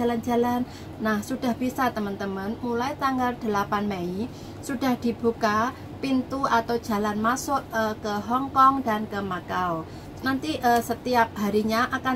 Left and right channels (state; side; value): identical; both; correlation 1.00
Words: Nah sudah bisa teman-teman, mulai tanggal 8 Mei sudah dibuka pintu atau jalan masuk ke Hongkong dan ke Makau. Nanti setiap harinya